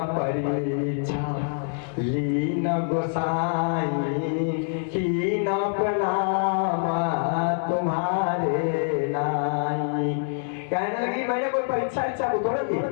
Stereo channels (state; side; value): silent; right; 61 dB below the other